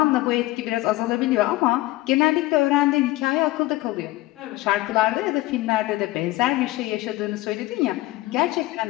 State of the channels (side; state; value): right; quieter; 18.3 dB